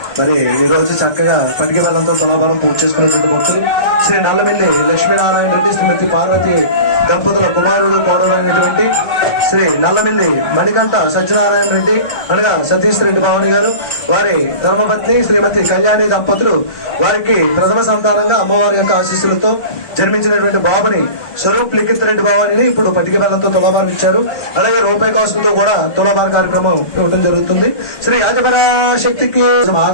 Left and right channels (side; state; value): right; late; 1.3 ms